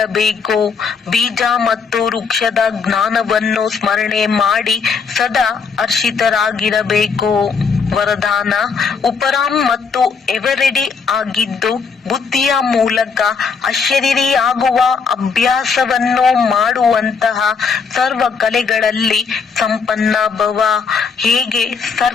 ಬೀಜ ಮತ್ತು ವೃಕ್ಷದ ಜ್ಞಾನವನ್ನು ಸ್ಮರಣೆ ಮಾಡಿ ಸದಾ ಹರ್ಷಿತರಾಗಿರಬೇಕು. ವರದಾನ: ಉಪರಾಮ್ ಮತ್ತು ಎವರೆಡಿ ಆಗಿದ್ದು ಬುದ್ಧಿಯ ಮೂಲಕ ಅಶರೀರಿಯಾಗುವ ಅಭ್ಯಾಸವನ್ನು ಮಾಡುವಂತಹ ಸರ್ವ ಕಲೆಗಳಲ್ಲಿ ಸಂಪನ್ನ ಭವ. ಹೇಗೆ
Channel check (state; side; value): quieter; right; 5.4 dB